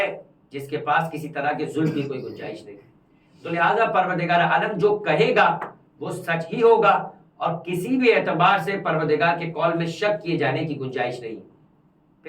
جس کے پاس کسی طرح کے ظلم کی کوئی گنجائش نہیں۔ تو لہٰذا پروردگار عالم جو کہے گا وہ سچ ہی ہوگا، اور کسی بھی اعتبار سے پروردگار کے قول میں شک کیے جانے کی گنجائش نہیں۔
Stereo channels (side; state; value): both; identical; correlation 1.00